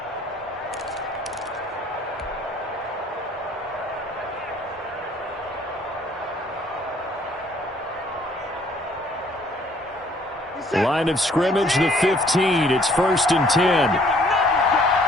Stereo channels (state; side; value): normal; both; correlation 0.60